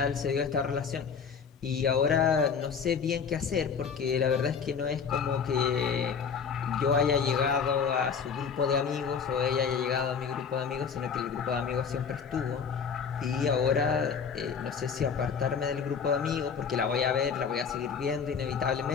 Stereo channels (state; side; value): quieter; right; 6.3 dB